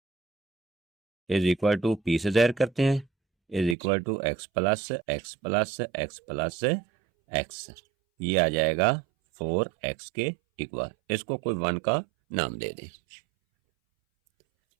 is equal to P से ज़ाहिर करते हैं, is equal to x plus x plus x plus x. ये आ जाएगा 4x के इक्वल। इसको कोई 1 का नाम दे दें।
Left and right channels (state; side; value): drops out; left; at 3.8 s